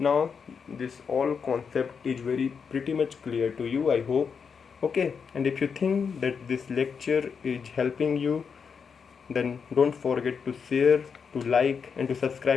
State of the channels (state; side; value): quieter; right; 6.1 dB